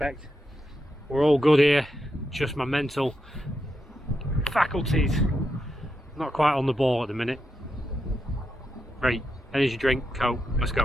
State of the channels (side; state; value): both; normal; correlation 0.85